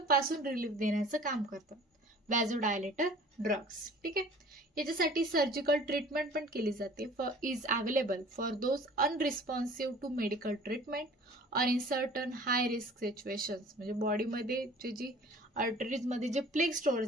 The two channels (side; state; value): both; normal; correlation 0.48